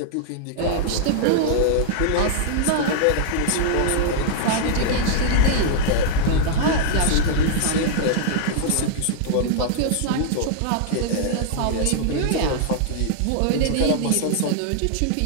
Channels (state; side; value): different; both; correlation -0.01